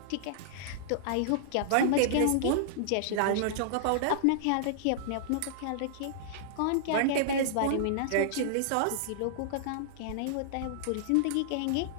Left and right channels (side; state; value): both; different; correlation -0.02